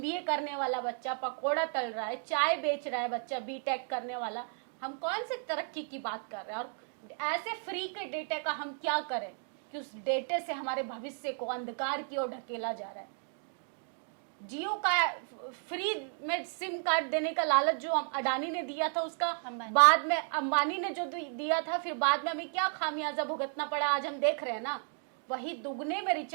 करने वाला बच्चा पकोड़ा तल रहा है, चाय बेच रहा है बच्चा BTech करने वाला। हम कौन से तरक्की की बात कर रहे हैं? और ऐसे फ्री के डेटा का हम क्या करें कि उस डेटे से हमारे भविष्य को अंधकार की ओर ढकेला जा रहा है। जियो का फ्री में सिम कार्ड देने का लालच जो अडानी ने दिया था, उसका बाद में अंबानी ने जो दिया था, फिर बाद में हमें क्या खामियाजा भुगतना पड़ा, आज हम देख रहे हैं ना। वही दुगने में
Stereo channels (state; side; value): silent; left; 56 dB below the other